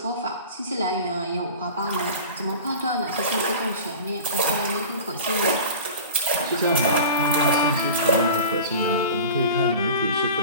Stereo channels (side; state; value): both; inverted; correlation -0.36